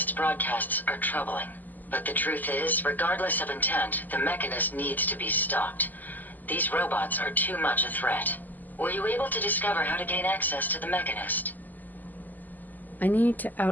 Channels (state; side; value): late; right; 0.084 ms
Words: broadcasts are troubling. But the truth is, regardless of intent, the Mechanist needs to be stopped. These robots are too much a threat. Were you able to discover how to gain access to the Mechanist? I need to